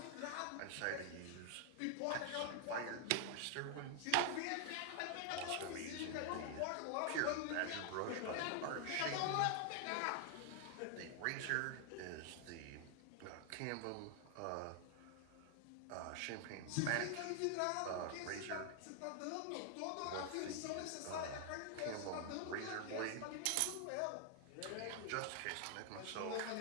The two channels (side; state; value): both; different; correlation 0.00